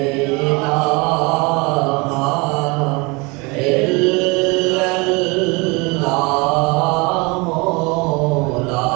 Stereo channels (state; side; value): quieter; left; 27.3 dB